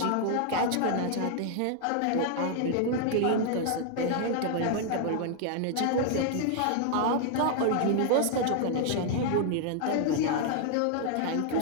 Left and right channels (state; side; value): different; both; correlation 0.00